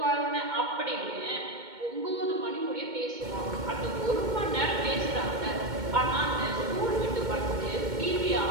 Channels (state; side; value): late; left; 2.2 ms